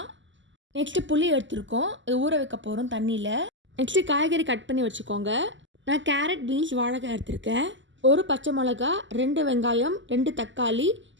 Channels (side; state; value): left; late; 0.54 ms